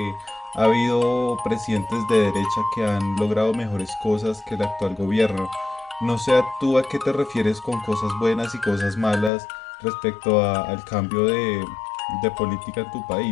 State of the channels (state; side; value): drops out; right; at 9.3 s